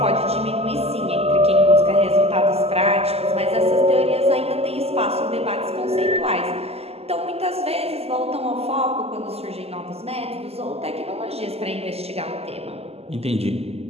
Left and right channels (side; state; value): left; late; 0.29 ms